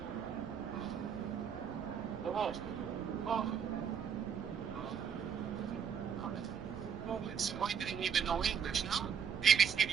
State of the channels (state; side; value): quieter; left; 7.4 dB